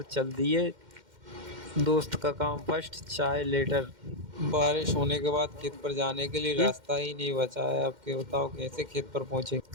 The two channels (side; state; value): left; late; 2.1 ms